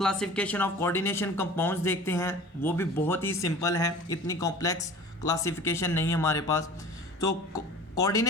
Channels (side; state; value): both; normal; correlation 0.42